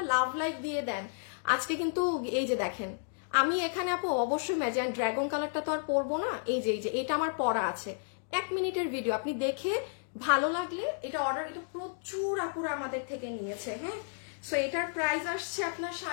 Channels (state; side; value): silent; right; digital silence